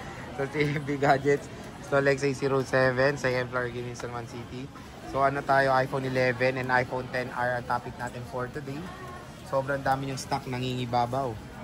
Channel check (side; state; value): both; identical; correlation 1.00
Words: sa CMB Gadgets Stall, XA07, second floor, Green San Juan City. So ano tayo, iPhone 11 and iPhone 10R ang topic natin for today. Sobrang dami yung stock, nangingibabaw.